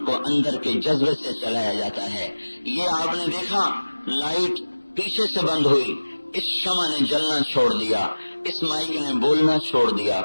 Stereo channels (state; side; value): inverted; both; correlation -1.00